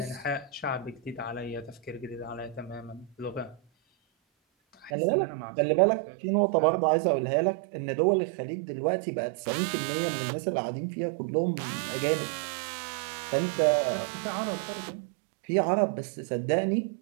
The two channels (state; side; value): drops out; left; at 4.9 s